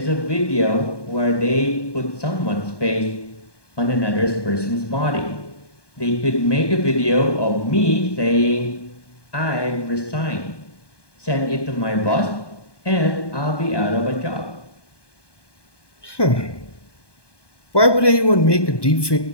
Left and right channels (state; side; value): late; right; 1.2 ms